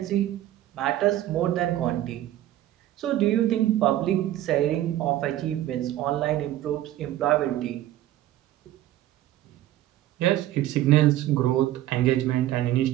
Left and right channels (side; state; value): left; quieter; 13.7 dB